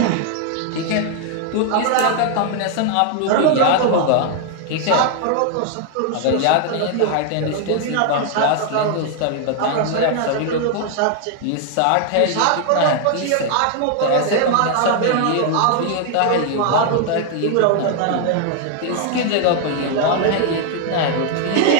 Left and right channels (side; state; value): both; different; correlation 0.00